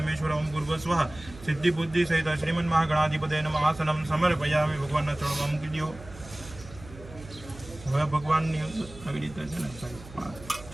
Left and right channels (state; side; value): noise; right; hum, 17 dB below the sound